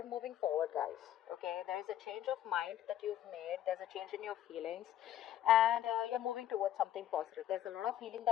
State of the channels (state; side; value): quieter; right; 11.6 dB